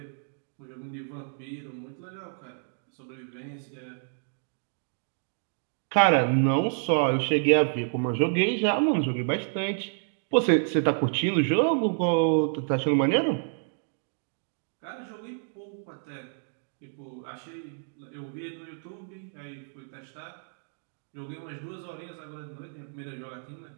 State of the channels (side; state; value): left; silent; digital silence